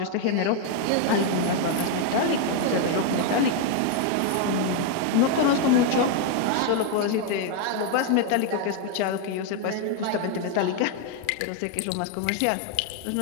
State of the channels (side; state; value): both; different; correlation 0.01